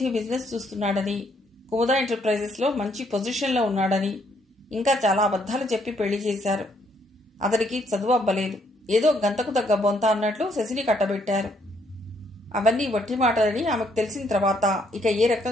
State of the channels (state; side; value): normal; both; correlation 0.70